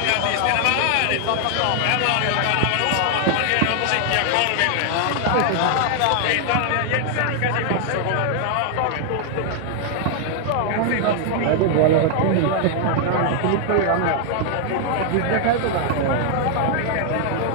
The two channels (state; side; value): different; both; correlation 0.00